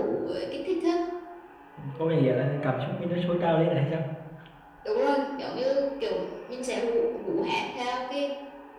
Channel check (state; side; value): identical; both; correlation 1.00